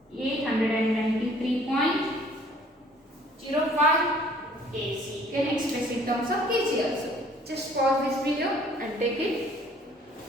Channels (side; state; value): both; normal; correlation 0.57